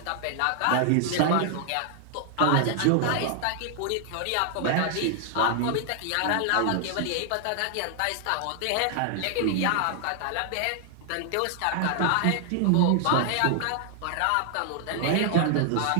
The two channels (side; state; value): both; different; correlation 0.00